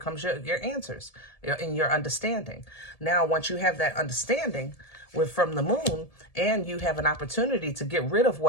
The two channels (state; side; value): late; right; 1.7 ms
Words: your answers and your understanding. Now, once you have that understanding from the Moon, and you have an opportunity to get rid of